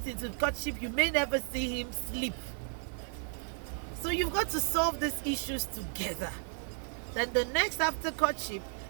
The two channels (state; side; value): silent; left; 55 dB below the other